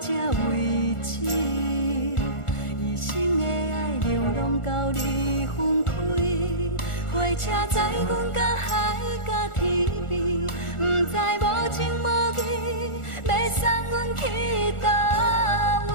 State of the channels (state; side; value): late; right; 1.4 ms